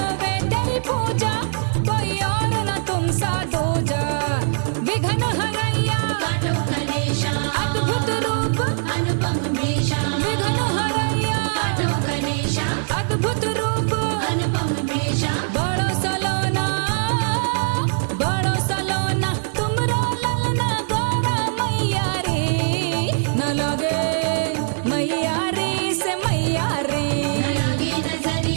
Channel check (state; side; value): silent; left; digital silence